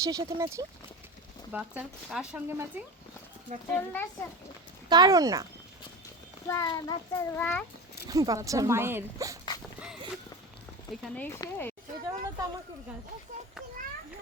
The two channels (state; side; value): normal; both; correlation 0.26